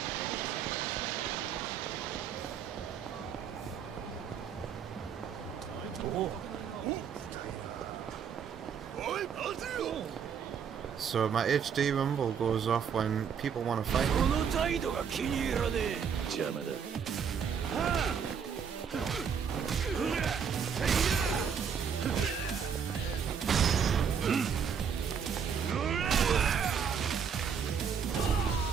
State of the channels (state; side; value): quieter; left; 7.2 dB